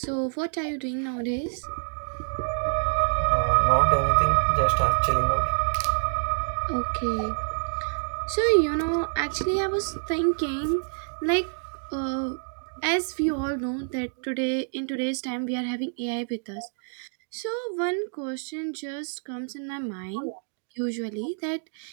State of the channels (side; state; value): left; silent; digital silence